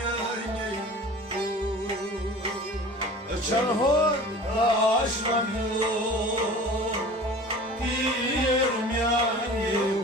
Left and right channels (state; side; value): normal; both; correlation 0.41